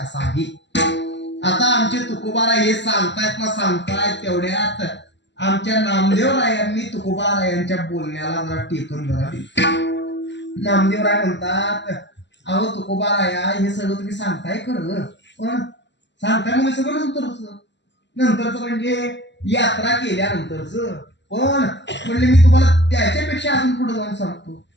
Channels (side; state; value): right; late; 0.52 ms